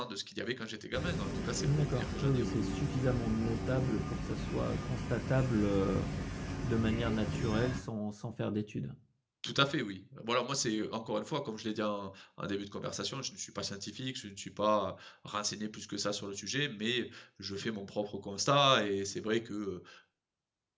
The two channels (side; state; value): both; identical; correlation 1.00